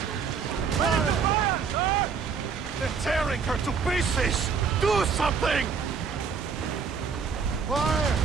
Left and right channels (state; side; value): quieter; left; 5.9 dB